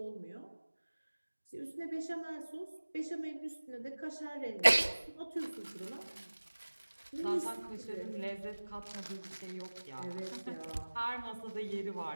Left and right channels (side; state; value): both; inverted; correlation -1.00